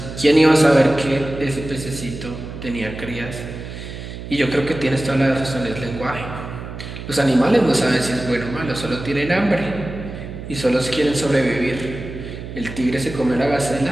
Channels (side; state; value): right; noise; hum, 10 dB below the sound